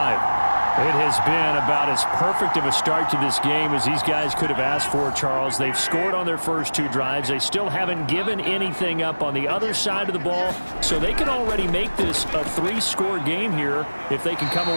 It has been about as perfect of a start to this game as these guys could have asked for, Charles. They've scored on their first 2 drives. They still haven't given anything up on the other side of the ball, so they can already make this a 3-score game here if they can come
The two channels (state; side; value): inverted; both; correlation -1.00